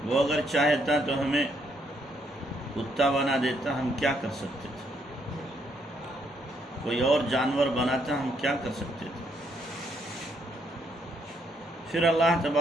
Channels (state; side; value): normal; both; correlation 0.73